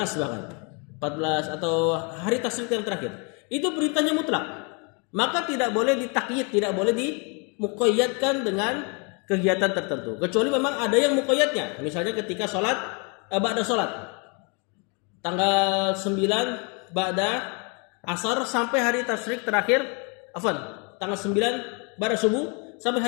bahkan. 14 atau hari tasyrik yang terakhir. Itu perintahnya mutlak. Maka tidak boleh ditakyid, tidak boleh dimuqayyadkan dengan kegiatan tertentu. Kecuali memang ada yang muqayyadnya. Misalnya ketika sholat, ba'da sholat. Tanggal 9 ba'da asar sampai hari tasyrik terakhir, tanggal 9 ba'da subuh sampai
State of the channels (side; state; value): right; quieter; 34.4 dB